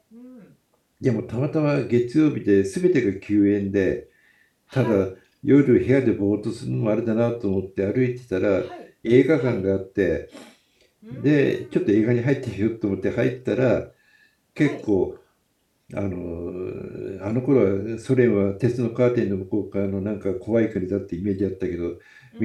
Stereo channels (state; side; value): identical; both; correlation 1.00